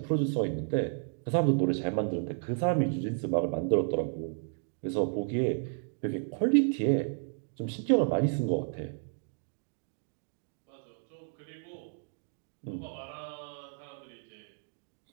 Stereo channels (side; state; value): left; silent; 56 dB below the other